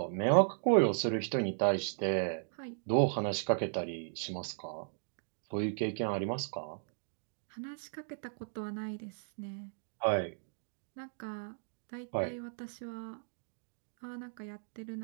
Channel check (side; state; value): left; silent; digital silence